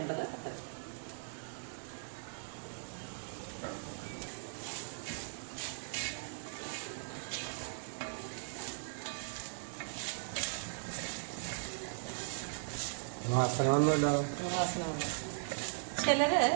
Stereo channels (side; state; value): left; silent; digital silence